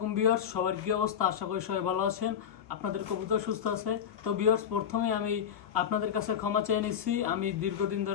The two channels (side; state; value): right; quieter; 8.5 dB